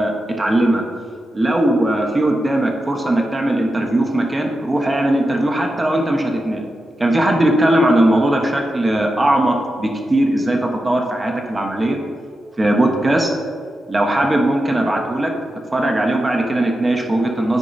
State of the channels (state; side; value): normal; both; correlation 0.90